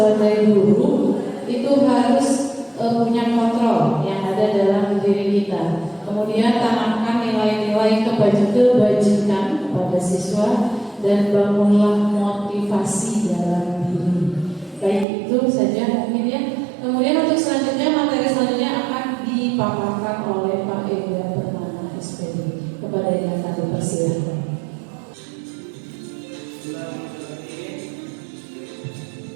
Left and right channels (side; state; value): left; drops out; at 15.1 s